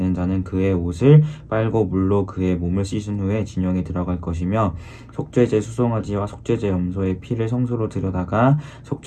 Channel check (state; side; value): identical; both; correlation 1.00